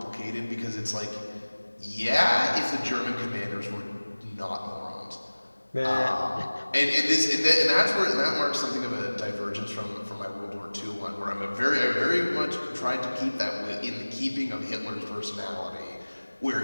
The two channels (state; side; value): inverted; both; correlation -1.00